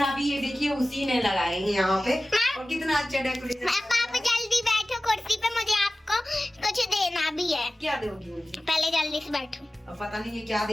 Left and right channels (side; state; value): both; normal; correlation 0.96